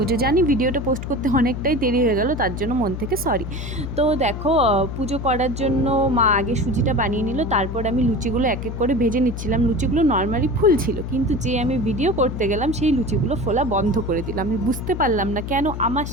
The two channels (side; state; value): left; noise; hum, 6 dB below the sound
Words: জানি ভিডিওটা পোস্ট করতে অনেকটাই দেরি হয়ে গেল, তার জন্য মন থেকে সরি। তো দেখো, পুজো করার জন্য মা আগে সুজিটা বানিয়ে নিল, তারপর আমি লুচিগুলো এক এক করে ভেজে নিচ্ছিলাম। লুচিগুলো নর্মালি ফুল ছিল, কিন্তু যে আমি ভিডিও করতে গেলাম সেই লুচিগুলো ফোলা বন্ধ করে দিলাম। আমি বুঝতে পারলাম না কেন আমার